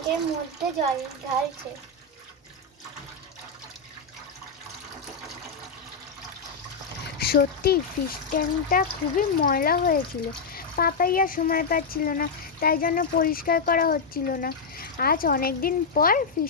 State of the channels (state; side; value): quieter; right; 4.4 dB